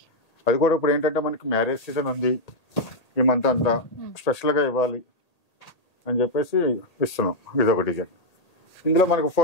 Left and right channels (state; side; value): late; right; 1.8 ms